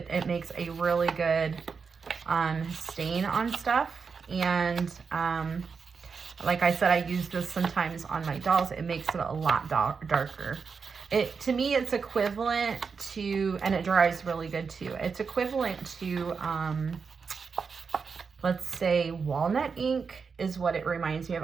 makes a really good stain on stuff. And like I said, I use this sometimes on my dolls. It makes it a lot darker. To me, it's equivalent to, and it dries really good too. It's equivalent to, let's say walnut ink is what it reminds me of.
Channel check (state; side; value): quieter; left; 5.5 dB